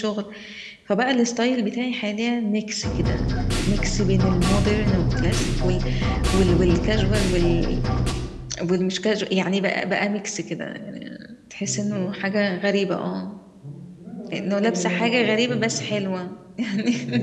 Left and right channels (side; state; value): both; identical; correlation 1.00